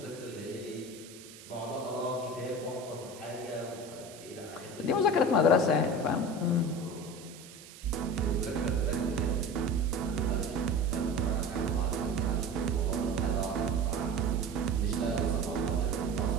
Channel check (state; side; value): noise; right; hiss, 18 dB below the sound